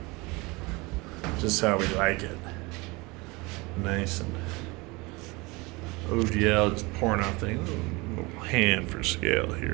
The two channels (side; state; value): left; quieter; 24.8 dB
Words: Just how we like it. Nice and OGL just pouring out things. A little hand for scale